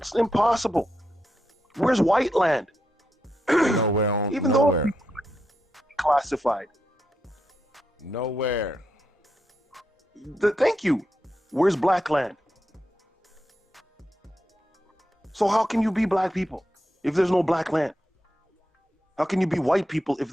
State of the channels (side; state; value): both; normal; correlation 0.84